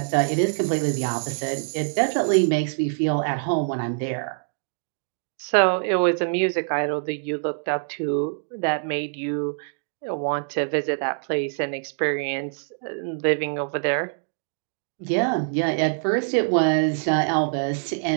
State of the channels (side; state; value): left; silent; digital silence